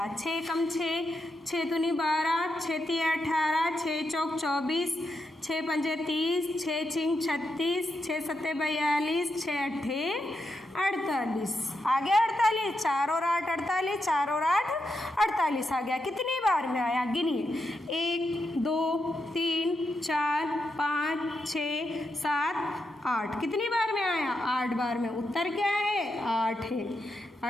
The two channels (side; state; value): both; normal; correlation 0.84